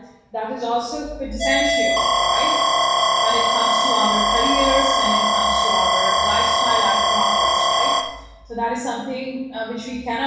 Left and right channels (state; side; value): identical; both; correlation 1.00